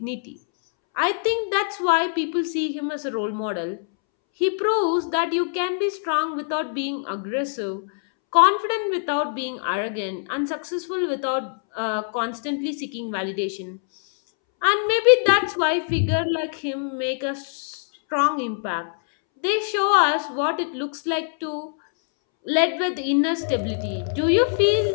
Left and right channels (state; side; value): silent; right; 63 dB below the other